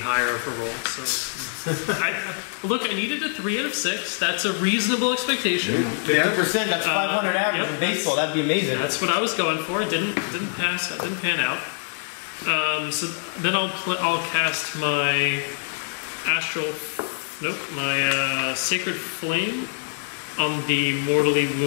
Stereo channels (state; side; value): silent; right; 62 dB below the other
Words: of a roll. So, I needed a 3 out of 6. That's a reasonable expectation. 50%, that's 500 average yep. in baseball. That'd be amazing. That's what I was going for. It didn't pass. It didn't pan out. So then I'll cast my astral. Nope, my sacred flame on the mortally